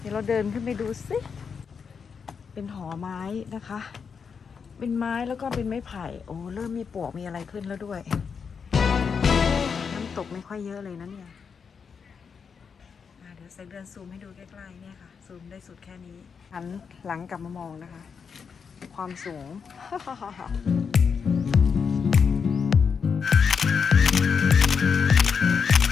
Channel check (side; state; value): right; quieter; 6.1 dB